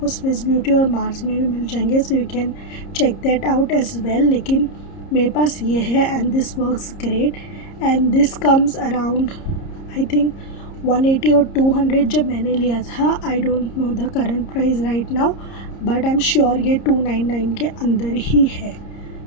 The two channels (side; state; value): right; late; 30 ms